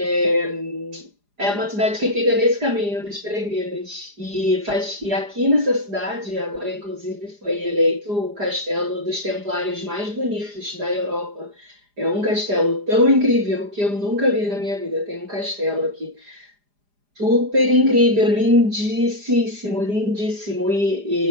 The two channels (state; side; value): late; left; 4.9 ms